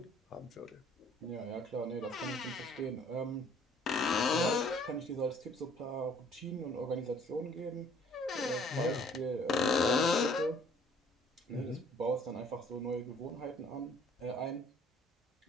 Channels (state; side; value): normal; both; correlation 0.57